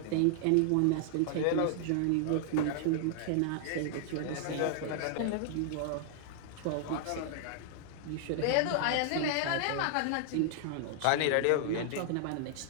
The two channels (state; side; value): different; both; correlation -0.01